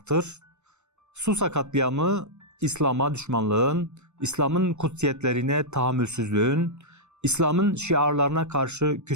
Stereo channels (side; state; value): left; late; 0.82 ms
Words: Susa katliamı, İslam'a düşmanlığın, İslam'ın kutsiyetlerine tahammülsüzlüğün, İslam'ın şiarlarına karşı